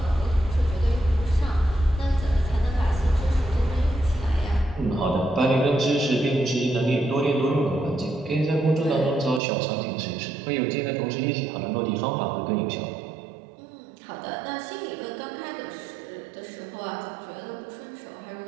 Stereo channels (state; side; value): drops out; left; at 9.4 s